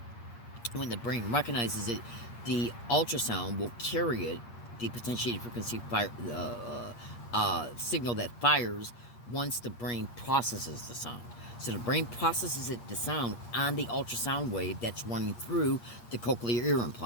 when the brain recognizes it, the ultrasound will carry it, the potentiated frequency signal that fires once the brain processes the sound. So the brain processes the sound on the ultrasound wave that's running through the cochlear ear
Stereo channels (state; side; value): late; right; 8.5 ms